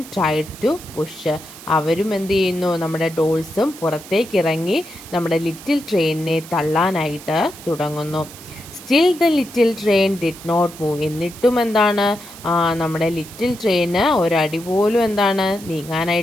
tried to push. അവരും എന്ത് ചെയ്യുന്നു, നമ്മുടെ ഡോൾസും പുറത്തേക്ക് ഇറങ്ങി നമ്മുടെ ലിറ്റിൽ ട്രെയിനിനെ തള്ളാനായിട്ട് തുടങ്ങുന്നു. Still the little train did not move. എന്നിട്ടും നമ്മുടെ ലിറ്റിൽ ട്രെയിന് ഒരടി പോലും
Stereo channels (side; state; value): right; noise; hiss, 17 dB below the sound